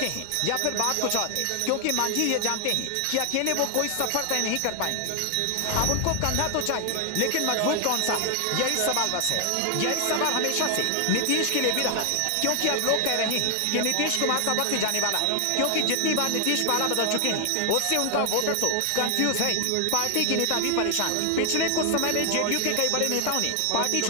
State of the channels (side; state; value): both; different; correlation 0.00